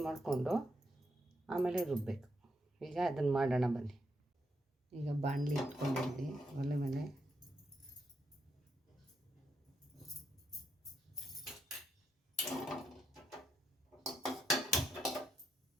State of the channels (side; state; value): both; normal; correlation 0.80